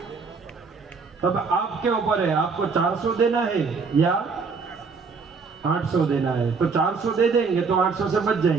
तब आपके ऊपर है, आपको 400 देना है या 800 देना है। तो 400 दे देंगे तो 800 से बच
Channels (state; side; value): quieter; left; 4.8 dB